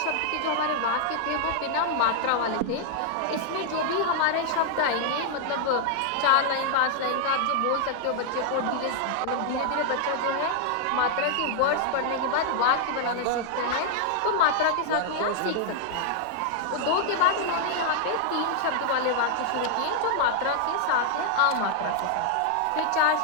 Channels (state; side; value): different; both; correlation 0.00